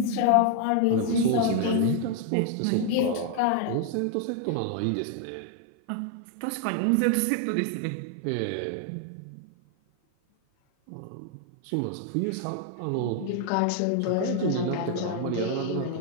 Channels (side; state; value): both; different; correlation 0.00